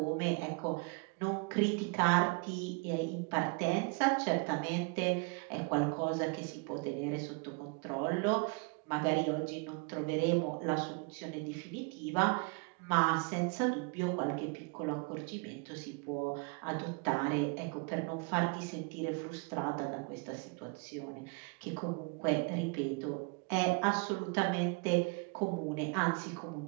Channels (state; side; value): quieter; left; 32.7 dB